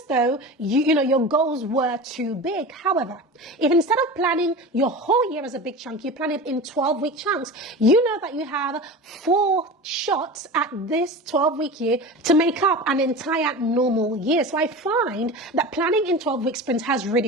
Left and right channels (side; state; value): both; normal; correlation 0.31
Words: though your goals were too big. However, if instead of planning your whole year as a big chunk, you plan it in 12-week chunks, you know that you have 4 shots at this 12-week year to make up an entire normal year. So I find that planning in 12-week sprints has